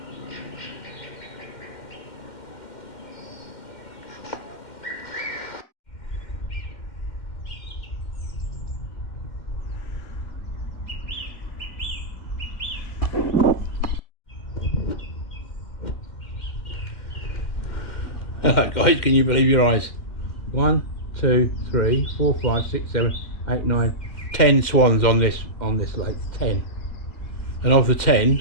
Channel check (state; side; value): late; right; 2.1 ms